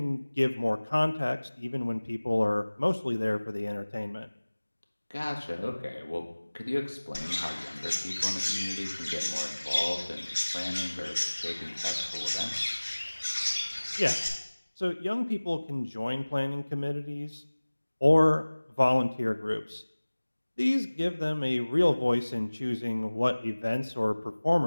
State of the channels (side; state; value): both; inverted; correlation -1.00